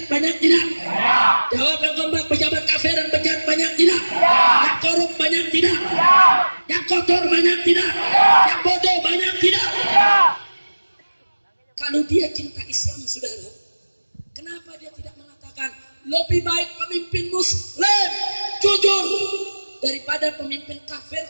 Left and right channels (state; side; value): inverted; both; correlation -1.00